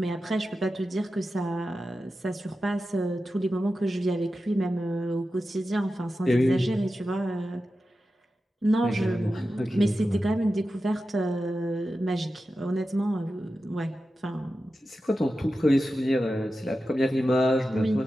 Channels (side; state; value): both; normal; correlation 0.92